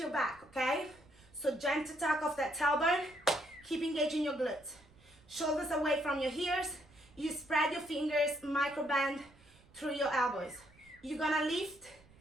your back, okay? So gentle tuck of that tailbone, keep engaging your glutes. Shoulders away from your ears. You spread your fingers, micro bend through your elbows. You're gonna lift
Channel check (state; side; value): noise; right; rumble, 27 dB below the sound